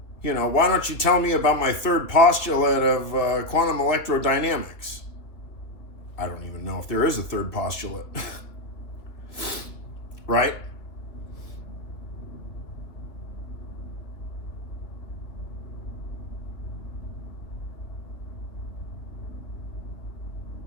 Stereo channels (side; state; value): right; late; 2.9 ms